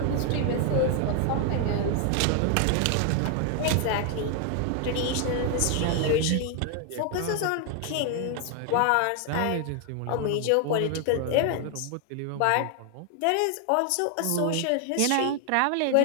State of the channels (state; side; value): different; both; correlation 0.00